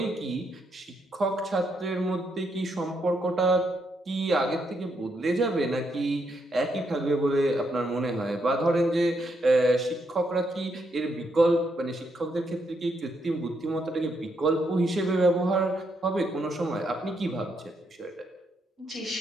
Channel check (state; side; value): normal; both; correlation 0.78